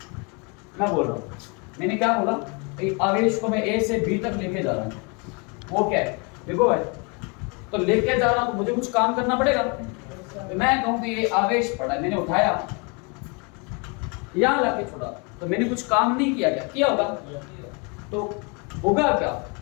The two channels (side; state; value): right; quieter; 32.5 dB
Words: मैं बोल रहा हूं, मैंने क्या बोला, आवेश को मैं ए से बी तक लेके जा रहा हूं, वो क्या है, विभव है। तो लेके जा रहा हूं तो मुझे कुछ काम करना पड़ेगा। तो मैं कहूं कि ये आवेश पड़ा, मैंने उठाया यहां लाके छोड़ा, तो मैंने कुछ काम नहीं किया, क्या किया होगा? तो होगा क्या,